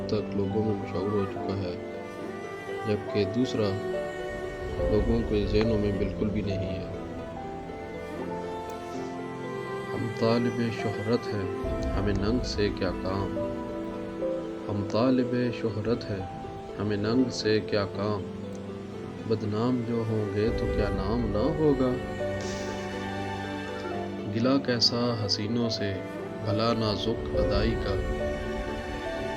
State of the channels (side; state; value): both; identical; correlation 1.00